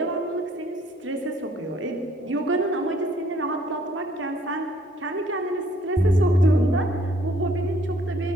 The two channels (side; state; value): both; normal; correlation 0.63